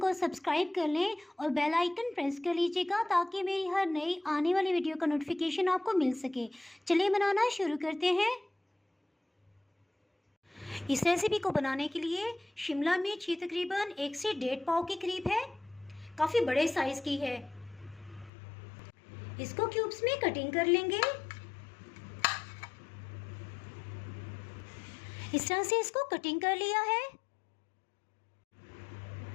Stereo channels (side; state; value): right; drops out; at 18.3 s